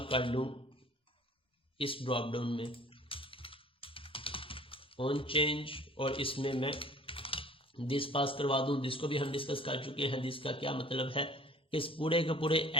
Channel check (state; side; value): normal; both; correlation 0.49